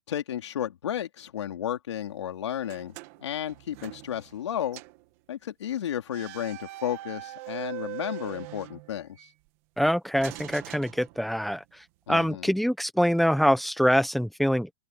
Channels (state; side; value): normal; both; correlation 0.73